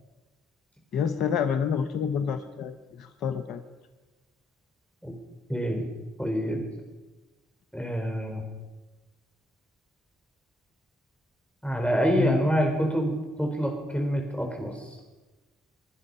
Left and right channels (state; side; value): normal; both; correlation 0.76